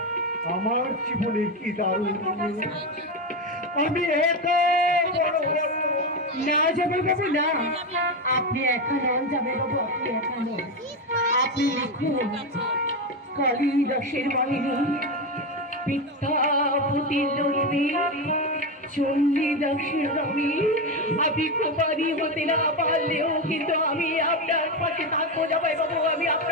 আমার জীবনে কি দারুণ। আমি এত বড় না জামাই বাবু, না, আপনি একা নন জামাই বাবু, আপনি একা নন। আপনি লিখুন কালিদাসের বাহিনী, বিদ্যাপতির লক্ষ্মী, চণ্ডীদাসের রবি। আমি কুমারী হতে না পারলেও কিন্তু আমি আপনার পাশে থাকবো জামাই বাবু, আমি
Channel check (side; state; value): both; normal; correlation 0.13